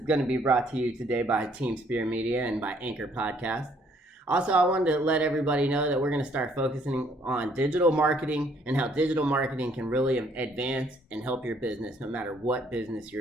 to be brought to you today by Team Spear Media and by Anchor Podcast. Also, I wanted to let everybody know that we're going to start focusing on digital marketing and how digital marketing can really advance and help your business no matter what business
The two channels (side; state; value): both; normal; correlation 0.65